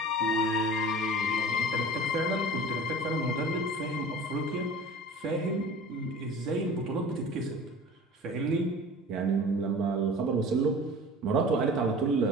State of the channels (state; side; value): normal; both; correlation 0.40